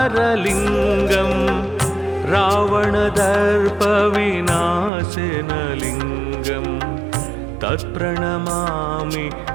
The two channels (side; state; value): left; drops out; at 4.9 s